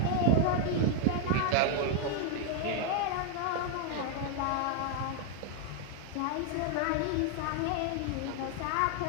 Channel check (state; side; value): different; both; correlation 0.00